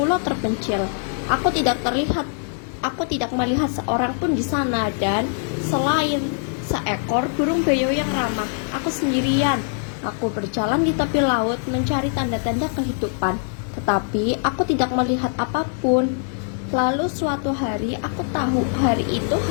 terpencil. Aku tidak melihat seorang pun di sana, dan selain seekor burung beo yang ramah, aku sendirian. Aku berjalan di tepi laut mencari tanda-tanda kehidupan, tetapi aku tidak melihat apapun. Lalu suatu hari aku tahu hari itu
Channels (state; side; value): silent; right; digital silence